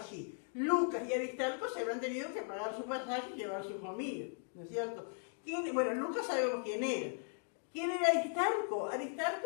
Lucas y Aristarco se habían tenido que pagar su pasaje y llevar su comida, ¿no es cierto? Bueno, Lucas sabemos quién era. ¿Quién era Aristarco?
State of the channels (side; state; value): right; silent; 53 dB below the other